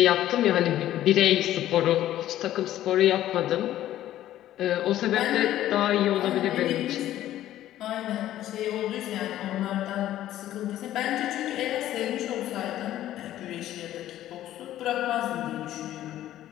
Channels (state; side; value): quieter; right; 13.1 dB